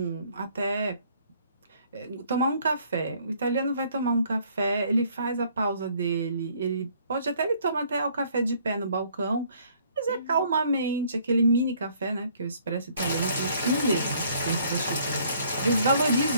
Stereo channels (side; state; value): both; inverted; correlation -0.62